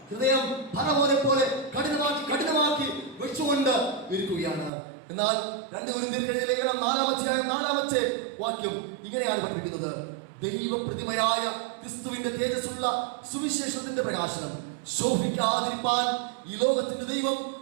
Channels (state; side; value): drops out; left; at 4.7 s